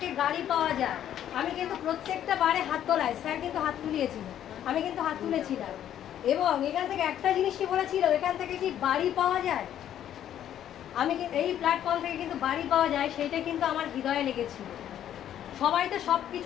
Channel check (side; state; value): right; quieter; 10.8 dB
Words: গাড়ি পাওয়া যায়। আমি কিন্তু প্রত্যেকটা বারে হাত তোলাই, স্যার কিন্তু হাত তুলিয়েছিল, আমি কিন্তু হাত তুলেছিলাম। এবং এখান থেকে একটা জিনিসই বলেছিল, এখান থেকে কি বাড়ি পাওয়া যায়, আমি এই প্ল্যাটফর্ম থেকে কিন্তু বাড়ি পাওয়া যায়, সেইটা কিন্তু আমার হৃদয়ে লেগেছিল। সবাই তো সব